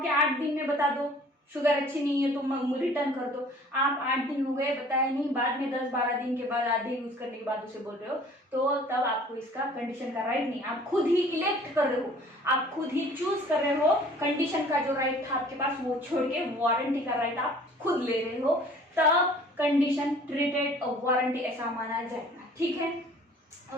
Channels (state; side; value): normal; both; correlation 0.51